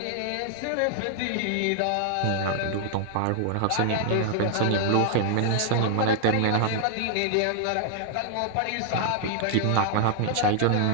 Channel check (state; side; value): different; both; correlation 0.00